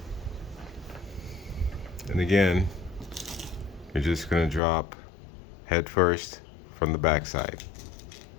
And again, You're just going to drop head first from the back side.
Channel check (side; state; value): right; drops out; at 4.6 s